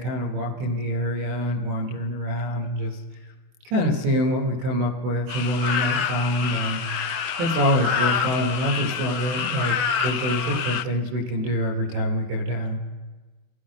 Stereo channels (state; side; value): late; left; 24 ms